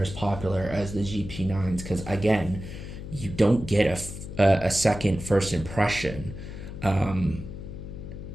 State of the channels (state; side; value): noise; left; hum, 10 dB below the sound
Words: as popular as the GP9s, because again, you don't get a second first impression.